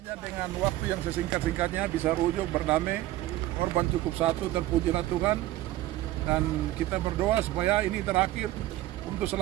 dengan waktu yang sesingkat-singkatnya bisa rujuk berdamai. Korban cukup satu, terpujilah Tuhan, dan kita berdoa supaya ini terakhir untuk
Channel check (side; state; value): left; quieter; 15.9 dB